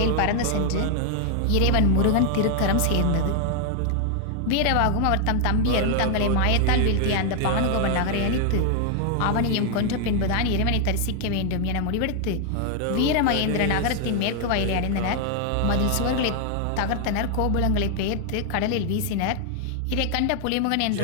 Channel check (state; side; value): different; both; correlation 0.00